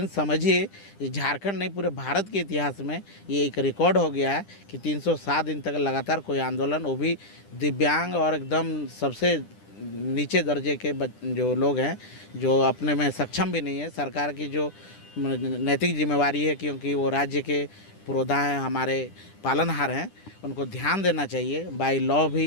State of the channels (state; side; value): late; right; 10 ms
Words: समझिए, झारखंड नहीं पूरे भारत के इतिहास में ये एक रिकॉर्ड हो गया है कि 307 दिन तक लगातार कोई आंदोलन, वो भी दिव्यांग और एकदम सबसे नीचे दर्जे के जो लोग हैं, जो अपने में सक्षम भी नहीं है। सरकार की जो नैतिक जिम्मेवारी है, क्योंकि वो राज्य के पुरोधा हैं, हमारे पालनहार हैं, उनको ध्यान देना चाहिए बाय लॉ